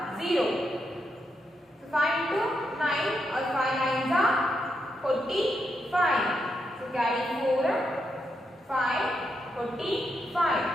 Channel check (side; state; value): both; normal; correlation 0.82